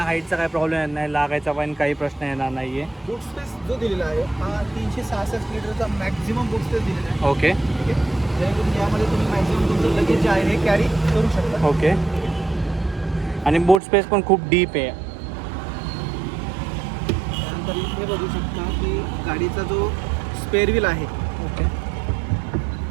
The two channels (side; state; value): left; drops out; at 13.8 s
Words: हाईटचा काही प्रॉब्लेम येत नाही, लागायचा पण काही प्रश्न येणार नाही आहे. बूट स्पेस जो दिलेला आहे हा 366 लिटरचा मॅक्झिमम बूट स्पेस दिलेला आहे. ओके. ठीक आहे, जेणेकरून यामध्ये तुम्ही मॅक्झिमम तुमचं लगेज जे आहे हे कॅरी करू शकता. ओके. आणि बूट स्पेस पण खूप डीप आहे. त्यानंतर इथे बघू शकता की गाडीचा जो स्पेअर व्हील आहे, ओके.